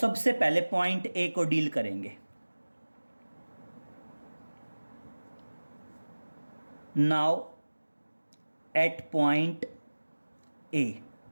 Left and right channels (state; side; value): inverted; both; correlation -1.00